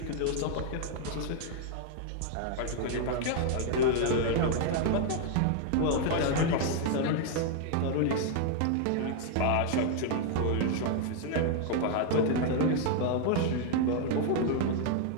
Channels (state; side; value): different; both; correlation 0.00